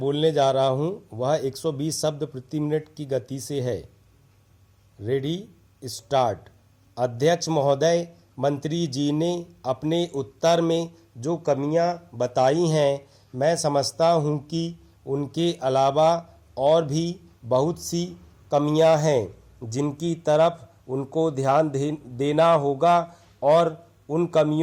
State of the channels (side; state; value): both; identical; correlation 1.00